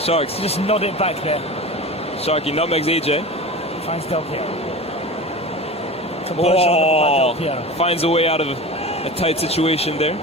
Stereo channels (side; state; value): both; normal; correlation 0.32